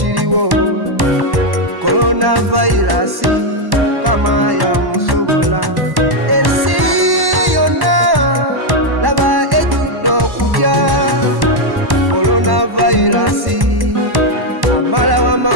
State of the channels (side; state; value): left; late; 1.1 ms